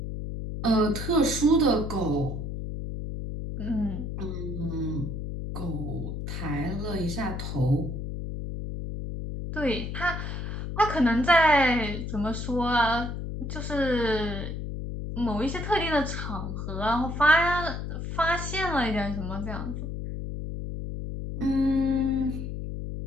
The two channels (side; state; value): left; noise; hum, 5 dB below the sound